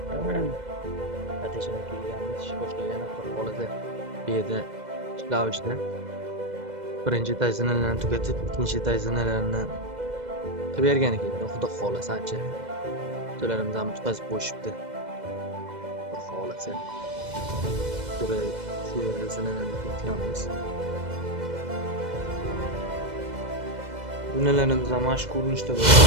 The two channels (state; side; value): late; left; 2.0 ms